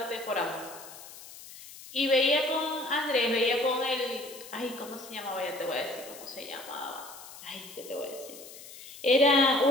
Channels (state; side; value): noise; left; hiss, 16 dB below the sound